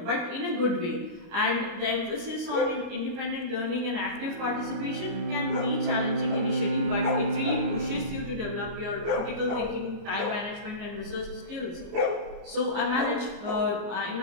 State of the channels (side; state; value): left; late; 29 ms